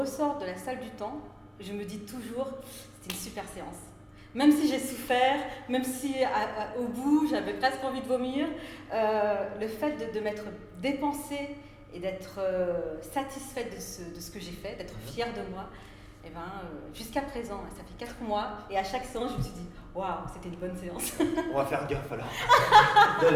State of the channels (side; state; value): both; identical; correlation 1.00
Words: de la salle du temps, je me dis toujours c'était une super séance. Même si j'ai souffert, même si au bout j'avais presque envie de vomir, le fait de m'être dépensée et d'être satisfaite de ce que j'ai fait, d'être fière de moi, et jusqu'à présent, ça fait 4 mois, et à chaque séance, je me suis dit waouh, c'était une bonne séance. On va faire gaffe alors,